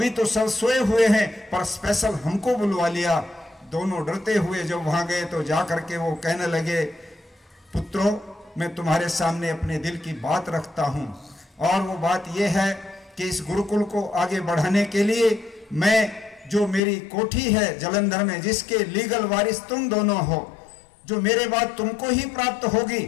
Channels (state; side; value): drops out; right; at 16.8 s